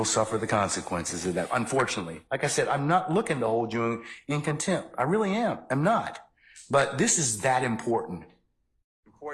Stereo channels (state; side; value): identical; both; correlation 1.00